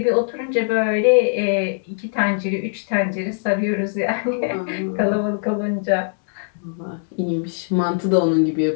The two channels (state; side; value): silent; right; 65 dB below the other